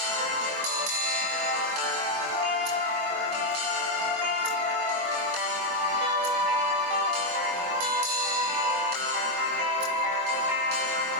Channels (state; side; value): late; left; 21 ms